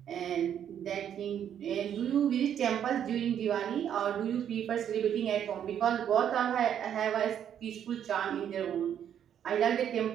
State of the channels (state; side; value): quieter; left; 9.4 dB